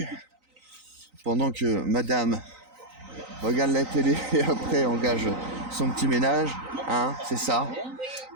pendant que madame regarde la télé et après engage son petit ménage. Hein, c'est ça.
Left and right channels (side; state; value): left; late; 3.9 ms